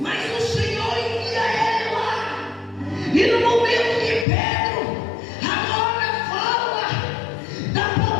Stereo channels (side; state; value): right; drops out; at 4.2 s